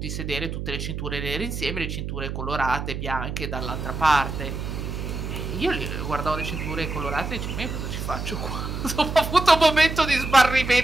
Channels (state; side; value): noise; right; hum, 5 dB below the sound